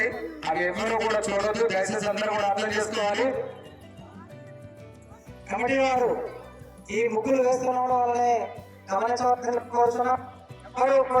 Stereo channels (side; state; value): both; identical; correlation 1.00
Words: అవి ఎవరు కూడా చూడొద్దు. దయచేసి అందరూ కూడా అర్థం చేసుకోవాలి. కమిటీ వారు ఈ ముగ్గులు వేసుకోవడం వల్లనే గమనించవలసిన కోరుతున్నాం. ఎవరు